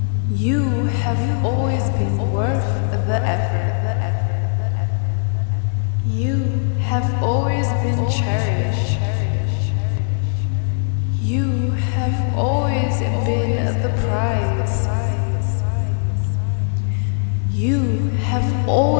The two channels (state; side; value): silent; right; 66 dB below the other